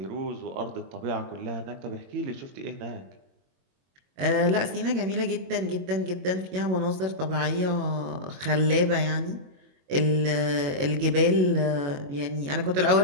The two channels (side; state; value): left; late; 22 ms